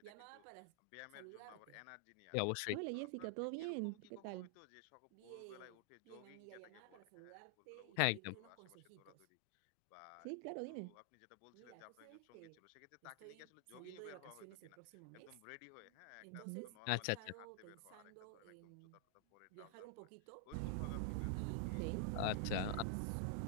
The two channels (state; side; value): different; both; correlation 0.00